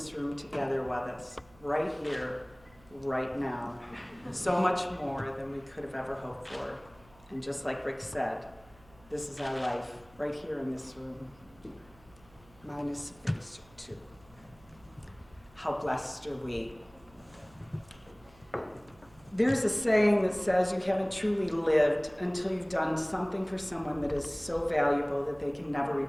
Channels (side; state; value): right; noise; hum, 27 dB below the sound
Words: room together with us, right here, right now. So much more than we could have ever hoped for. And just like Rick said, this is our life, right here in this room. Mine is phase 2. How blessed are we? There's a saying that says you haven't truly lived until you've done something for someone that is so valuable that they can never